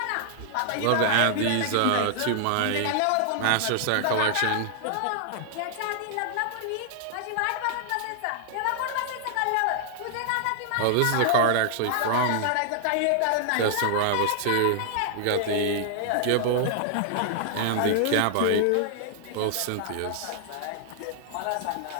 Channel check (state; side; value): different; both; correlation -0.01